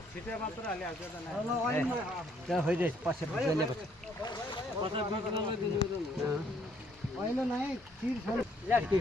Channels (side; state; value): both; normal; correlation 0.67